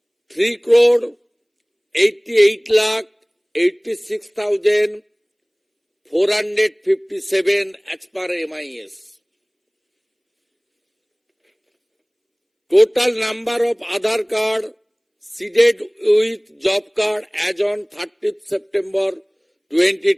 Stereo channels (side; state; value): both; identical; correlation 1.00